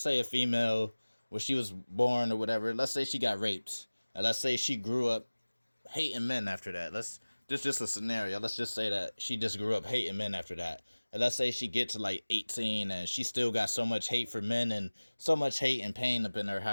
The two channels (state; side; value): inverted; both; correlation -1.00